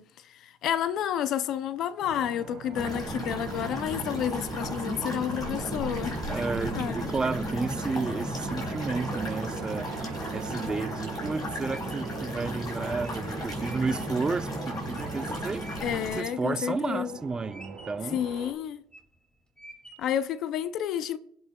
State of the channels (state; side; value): normal; both; correlation 0.63